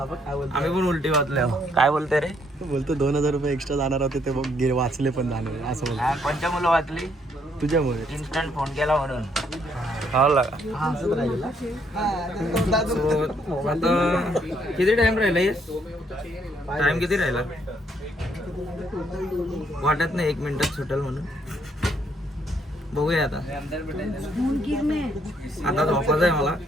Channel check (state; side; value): normal; both; correlation 0.70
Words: पण उलटी वाचले. काय बोलते रे? बोलतो 2000 रुपये एक्स्ट्रा जाणार होते ते बघ, वाचले पण जाणार असं बोलतो. कोणत्या मुलं वाचली? तुझ्यामुळे. इन्स्टंट फोन केला म्हणून. किती टाइम राहिला? टाइम किती राहिला? वाटत नाही 1 मिनिटात सुटेल म्हणून. बघूया आता. आता झोपायचं आहे मला.